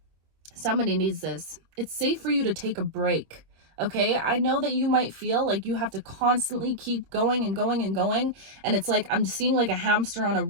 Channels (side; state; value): left; late; 25 ms